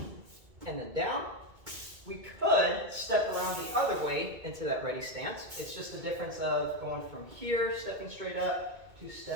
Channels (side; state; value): left; late; 2.2 ms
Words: and then down. We could step around the other way into that ready stance. It's just the difference of going from here, stepping straight up, to